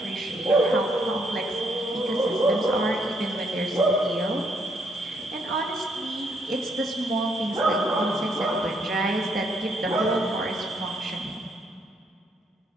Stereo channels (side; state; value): both; normal; correlation 0.72